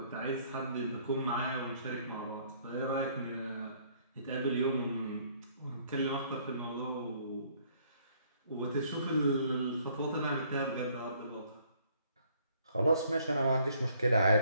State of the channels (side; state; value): both; inverted; correlation -0.63